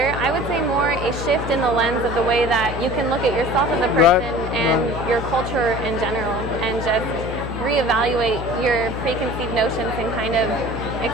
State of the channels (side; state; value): left; noise; hum, 7 dB below the sound